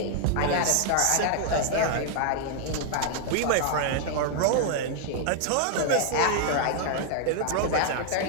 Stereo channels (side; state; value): both; different; correlation 0.00